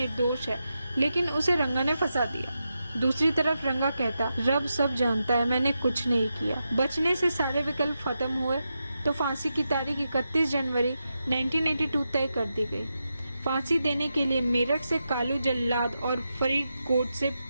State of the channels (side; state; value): both; inverted; correlation -0.88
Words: है, लेकिन उसे रंगा ने फंसा दिया। दूसरी तरफ रंगा कहता, रब सब जानता है, मैंने कुछ नहीं किया। बचने से सारे विकल्प खत्म हुए तो फांसी की तारीख 31 जनवरी 1982 तय कर दी गई। फांसी देने के लिए मेरठ से कालू जल्लाद और फरीदकोट से